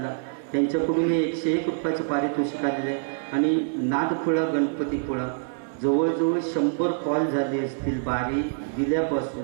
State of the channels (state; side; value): silent; left; 61 dB below the other